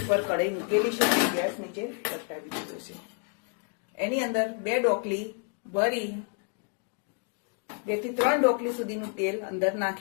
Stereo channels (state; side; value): quieter; right; 39.6 dB